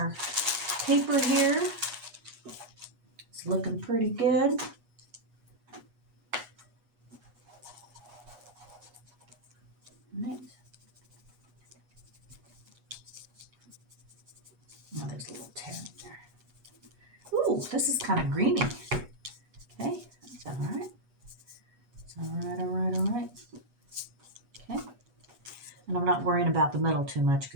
paper here. It's looking pretty good. Right. Oh, there's a little tear in there. Ooh, this is kind of greeny. Okay, that's all right. It's all right, all right, all right. Okay. And I'm not worrying about the middle too much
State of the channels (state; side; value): late; left; 8.3 ms